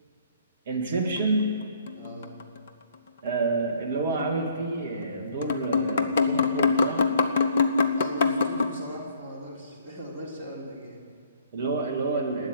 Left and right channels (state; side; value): inverted; both; correlation -0.61